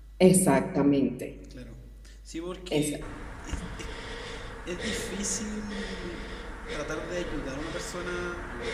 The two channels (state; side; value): identical; both; correlation 1.00